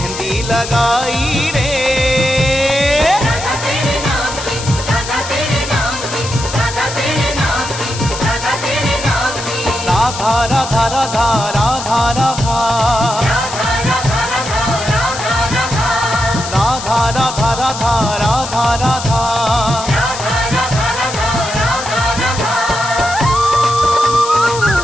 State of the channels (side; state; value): left; noise; hiss, 9 dB below the sound